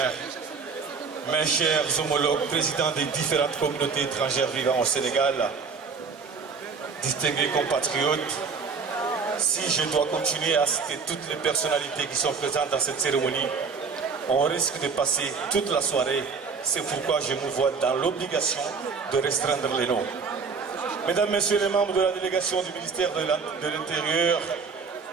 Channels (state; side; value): quieter; left; 5.2 dB